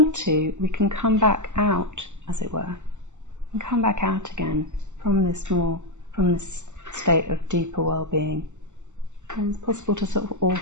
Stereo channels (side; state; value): left; late; 0.84 ms